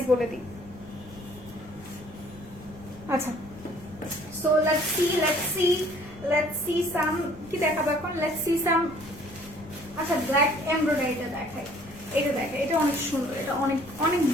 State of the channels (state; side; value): noise; left; rumble, 19 dB below the sound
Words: বলে দিই। আচ্ছা, সো লেটস সি সাম, কি দেখাবো এখন? Let's see some. আচ্ছা, ব্ল্যাক এমব্রয়ডারিটা দেখাই। এটা দেখে, এটা অনেক সুন্দর, এটা অনেক অনেক